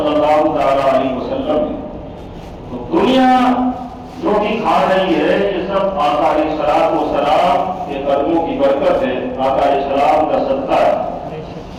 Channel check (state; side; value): identical; both; correlation 1.00